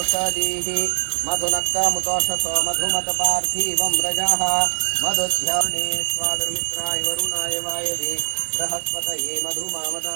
मधुनक्कमुतोषसो मधुमतपार्थिवं रजः मधुध्याने स्वादुर्मित्राय वरुणाय वायवे बृहस्पतये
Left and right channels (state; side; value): silent; left; 59 dB below the other